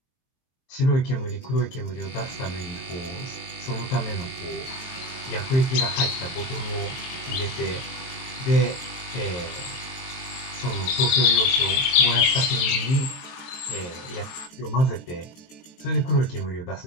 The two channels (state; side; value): late; right; 23 ms